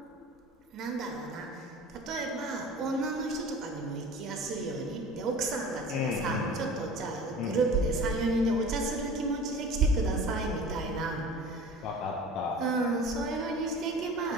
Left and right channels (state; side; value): normal; both; correlation 0.40